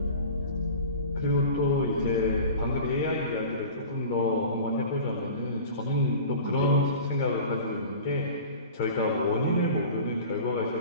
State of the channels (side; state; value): both; inverted; correlation -0.39